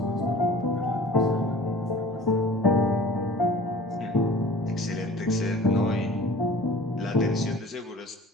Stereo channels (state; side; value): normal; both; correlation 0.45